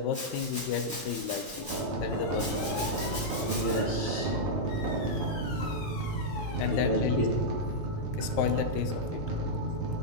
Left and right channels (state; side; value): normal; both; correlation -0.06